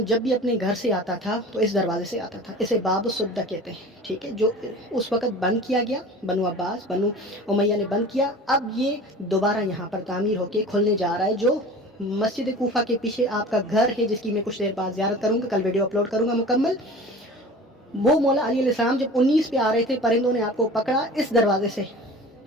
جب بھی اپنے گھر سے آتا تھا تو اس دروازے سے آتا تھا، اسے باب السدہ کہتے ہیں، ٹھیک ہے، جو اس وقت بند کیا گیا، بنو عباس بنو امیہ نے بند کیا، اب یہ دوبارہ یہاں پر تعمیر ہو کے کھلنے جا رہا ہے، جو مسجد کوفہ کے پیچھے آپ کا گھر ہے، جس کی میں کچھ دیر بعد زیارت کروں گا، کل ویڈیو اپلوڈ کروں گا مکمل۔ وہ مولا علی علیہ السلام جب 19 پہ آ رہے تھے، پرندوں نے آپ کو پکڑا، اس دروازے سے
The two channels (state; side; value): normal; both; correlation 0.39